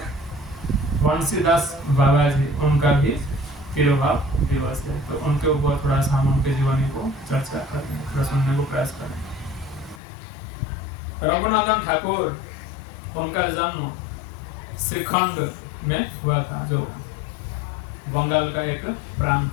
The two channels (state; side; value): drops out; right; at 10.0 s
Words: बंसीदास बाबा जी उनका भी तिरुभाव दिवस है। तो उनके ऊपर थोड़ा सा हम उनके जीवनी को चर्चा करें, थोड़ा सुनने को प्रयास करें। रघुनंदन ठाकुर, उनका जन्म श्रीखंड में हुआ था, जो बंगाल का एक प्रांत